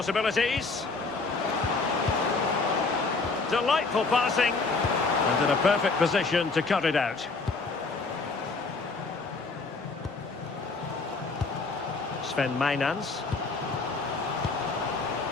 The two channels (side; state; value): right; quieter; 4.0 dB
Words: Delightful passing. And in a perfect position to cut it out. Sven Mainans.